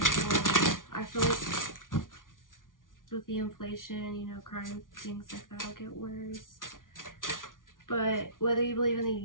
I feel like with the inflation, you know, crime, things like that will get worse. But whether you believe in the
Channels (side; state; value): right; late; 0.89 ms